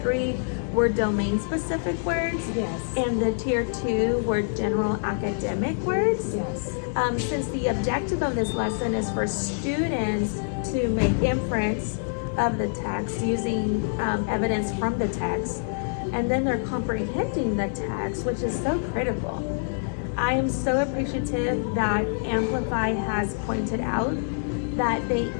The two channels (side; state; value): right; silent; digital silence